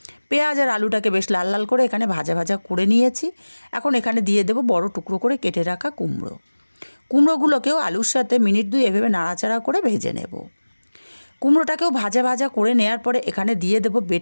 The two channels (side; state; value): both; inverted; correlation -1.00